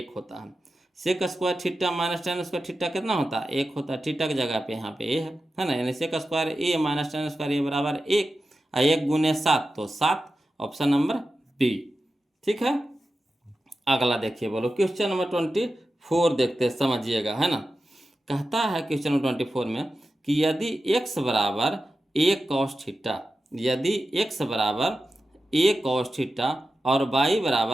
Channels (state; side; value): normal; both; correlation 0.92